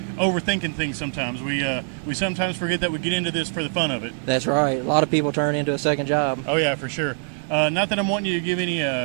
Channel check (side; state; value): left; silent; 63 dB below the other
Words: overthinking things sometimes. We sometimes forget that we get into this for the fun of it. That's right. A lot of people turn it into a second job. Oh, yeah, for sure. Not that I'm wanting you to give